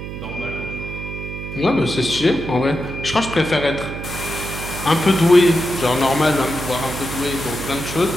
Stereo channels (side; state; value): right; noise; hum, 8 dB below the sound